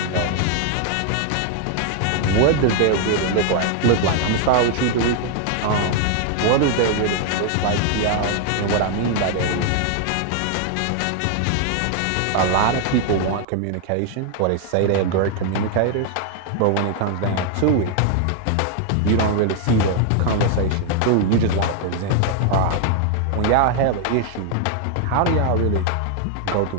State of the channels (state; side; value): different; both; correlation 0.00